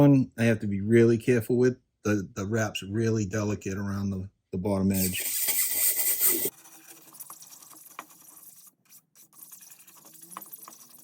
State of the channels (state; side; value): identical; both; correlation 1.00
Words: I have to be really careful with. The wrap's really delicate around the bottom edge.